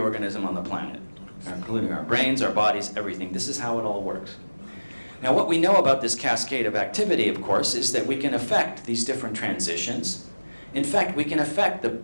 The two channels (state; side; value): inverted; both; correlation -1.00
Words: on the planet, including our brains, our bodies, everything. This is how it all works. Now, what we know about this cascade of activity, of course, is that we can affect these different transitions. In fact, we can affect